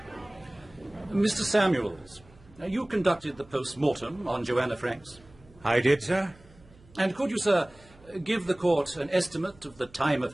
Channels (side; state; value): right; noise; hum, 26 dB below the sound